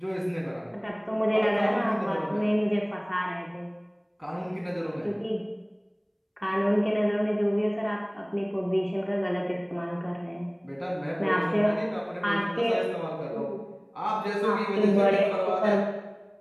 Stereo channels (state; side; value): identical; both; correlation 1.00